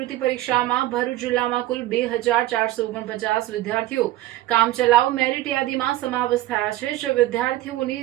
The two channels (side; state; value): left; quieter; 15.2 dB